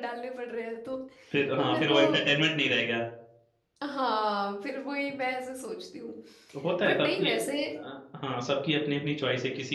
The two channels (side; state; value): both; identical; correlation 1.00